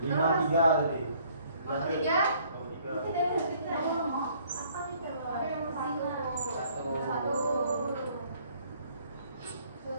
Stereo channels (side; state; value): both; inverted; correlation -0.61